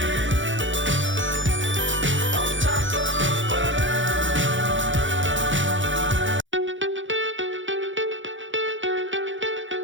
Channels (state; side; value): late; left; 0.56 ms